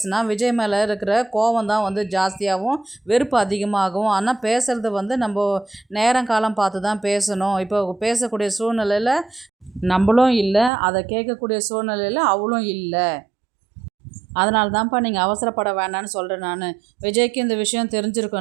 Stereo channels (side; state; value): left; drops out; at 10.7 s